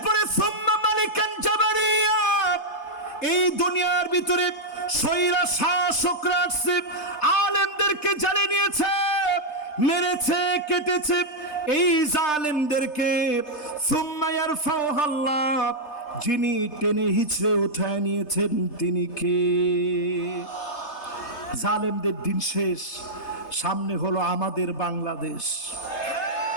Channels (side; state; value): right; late; 3.3 ms